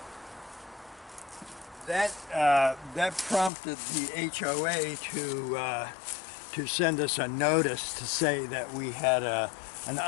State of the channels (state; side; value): drops out; right; at 3.5 s